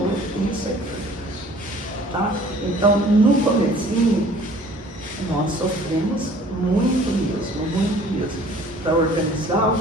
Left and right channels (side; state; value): both; normal; correlation 0.52